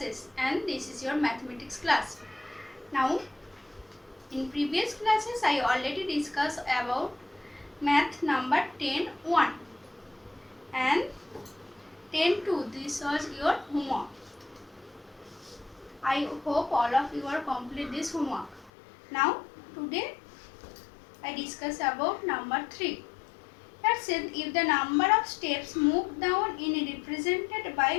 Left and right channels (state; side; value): drops out; right; at 18.7 s